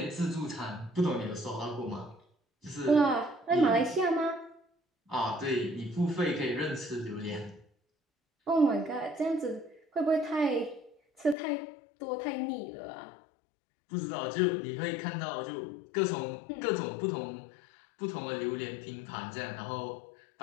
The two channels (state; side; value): drops out; right; at 11.4 s